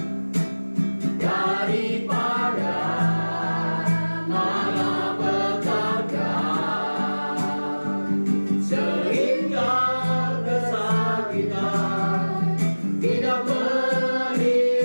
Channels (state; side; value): inverted; both; correlation -1.00